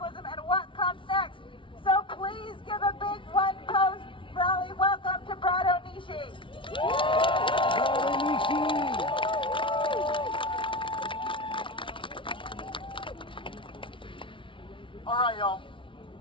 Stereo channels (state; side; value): late; right; 0.25 ms